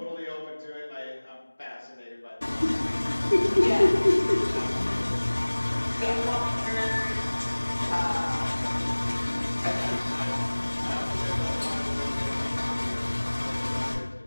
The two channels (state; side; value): inverted; both; correlation -1.00